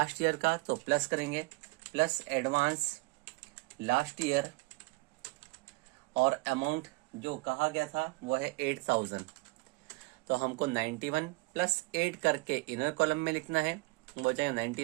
ईयर का, तो प्लस करेंगे, प्लस एडवांस लास्ट ईयर, और अमाउंट जो कहा गया था वो है 8,000। तो हमको 91 प्लस 8 करके इनर कॉलम में लिखना है, वो जाएगा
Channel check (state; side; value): quieter; left; 24.4 dB